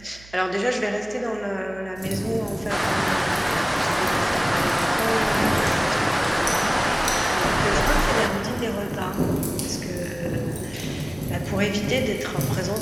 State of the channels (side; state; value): right; noise; hum, 22 dB below the sound